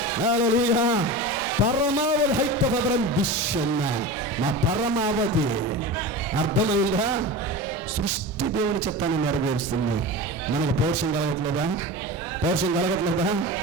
హల్లెలూయా. పరమావధి హైతభద్రం విషన్న మా పరమావధి. అర్థమైందా? సృష్టి దేవుని చిత్తాన్ని నెరవేరుస్తుంది. మనకు పౌరుషం కలగట్లేదా? పౌరుషం కలగట్లేదా?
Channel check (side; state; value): both; normal; correlation 0.28